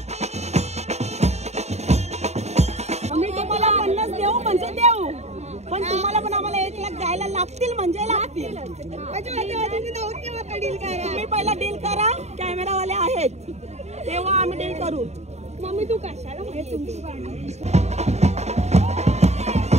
पण तुम्हाला पण आम्हाला 1 लाख द्यायला लागतील म्हणजे लागतील. तुम्ही पहिला डील करा कॅमेरावाले आहेत तेव्हा आम्ही डील करू. मम्मी तू कशाला म्हणजे तुमची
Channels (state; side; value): late; left; 0.32 ms